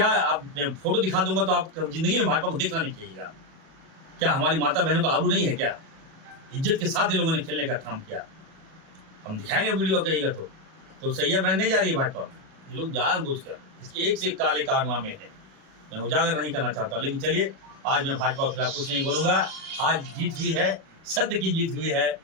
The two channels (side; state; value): left; late; 37 ms